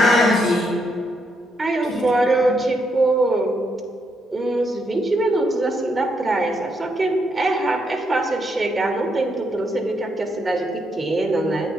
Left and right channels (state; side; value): normal; both; correlation 0.78